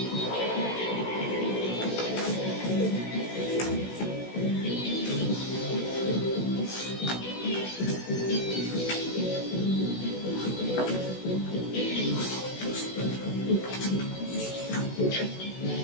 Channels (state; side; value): late; right; 16 ms